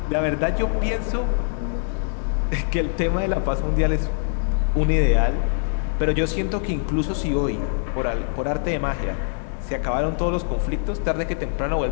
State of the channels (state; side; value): silent; right; digital silence